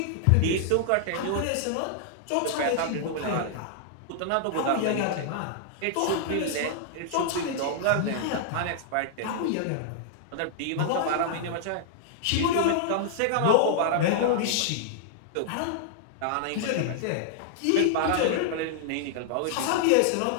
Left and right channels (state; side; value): different; both; correlation -0.01